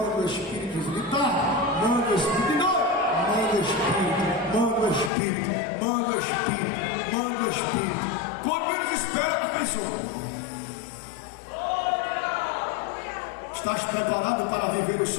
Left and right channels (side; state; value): right; drops out; at 5.1 s